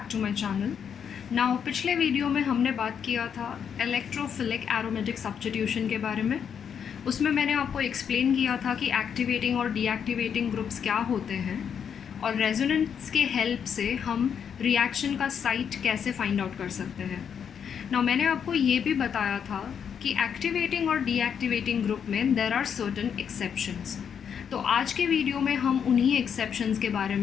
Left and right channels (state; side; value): quieter; right; 7.6 dB